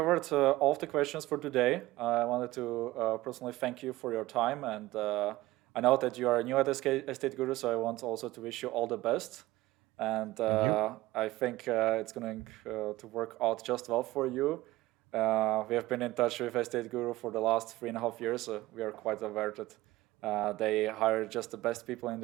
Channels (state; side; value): quieter; left; 17.9 dB